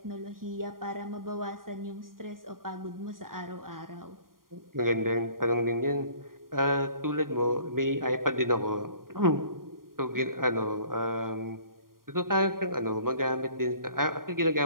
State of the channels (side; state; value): left; late; 0.91 ms